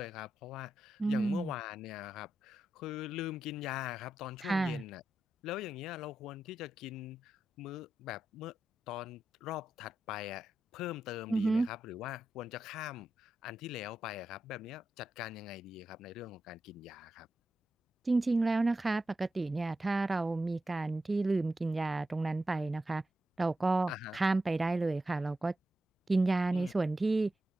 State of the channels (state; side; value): normal; both; correlation 0.89